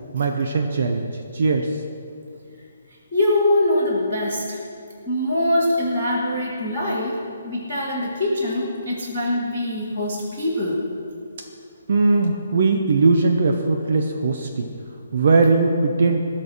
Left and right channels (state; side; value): inverted; both; correlation -0.76